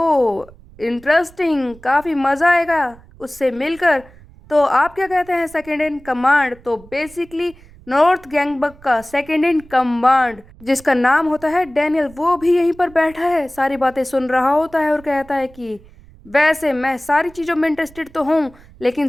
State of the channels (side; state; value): right; noise; rumble, 23 dB below the sound